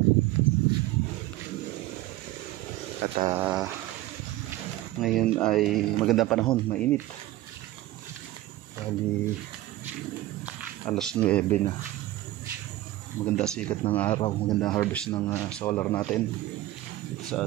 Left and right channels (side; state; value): left; quieter; 16.1 dB